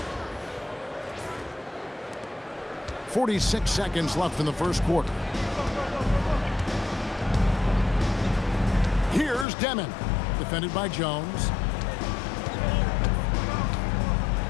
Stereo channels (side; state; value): right; drops out; at 9.5 s